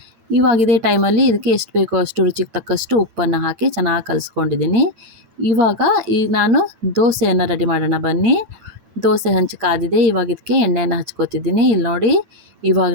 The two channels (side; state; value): left; late; 9.0 ms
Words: ಇವಾಗ ಇದೇ ಟೈಮಲ್ಲಿ ಇದಕ್ಕೆ ಎಷ್ಟು ಬೇಕೋ ಅಷ್ಟು ರುಚಿಗೆ ತಕ್ಕಷ್ಟು ಉಪ್ಪನ್ನು ಹಾಕಿ ಚೆನ್ನಾಗಿ ಕಲಿಸ್ಕೊಂಡಿದ್ದೀನಿ. ಇವಾಗ ನಾನು ದೋಸೆಯನ್ನು ರೆಡಿ ಮಾಡೋಣ ಬನ್ನಿ. ದೋಸೆ ಹಂಚು ಕಾದಿದೆ. ಇವಾಗ ಇದಕ್ಕೆ ಎಣ್ಣೆಯನ್ನು ಹಚ್ಕೋತಿದ್ದೀನಿ. ಇಲ್ಲಿ ನೋಡಿ, ಇವಾಗ